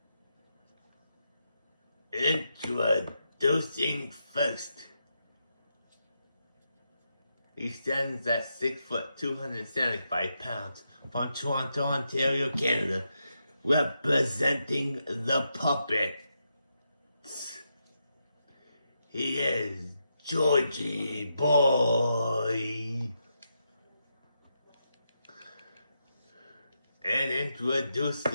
Introducing first. He stands at 6 foot 275 pounds from Toronto, Ontario, Canada, representing the Puppets. He is Georgie Boy. And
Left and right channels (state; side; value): inverted; both; correlation -0.84